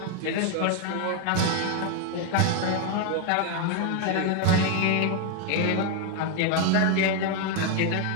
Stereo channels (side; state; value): both; different; correlation 0.01